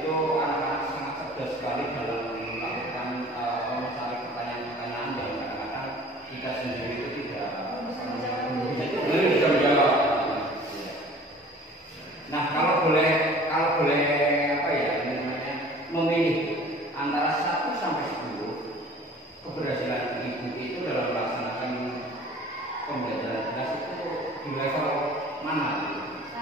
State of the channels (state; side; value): normal; both; correlation 0.47